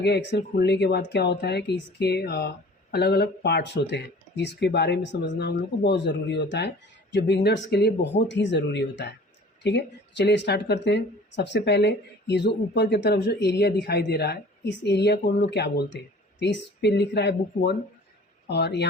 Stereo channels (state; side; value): normal; both; correlation 0.47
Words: एक्सेल खुलने के बाद क्या होता है कि इसके अलग अलग पार्ट्स होते हैं, जिसके बारे में समझना हम लोग को बहुत ज़रूरी होता है, जो बिगनर्स के लिए बहुत ही ज़रूरी होता है। ठीक है, तो चलिए स्टार्ट करते हैं। सबसे पहले ये जो ऊपर की तरफ जो एरिया दिखाई दे रहा है, इस एरिया को हम लोग क्या बोलते हैं, तो इस पे लिख रहा है बुक 1 और